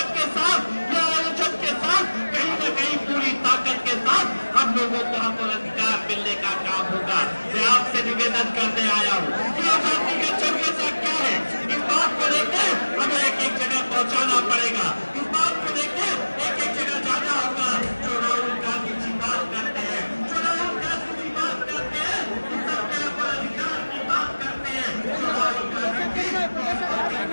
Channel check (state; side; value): inverted; both; correlation -1.00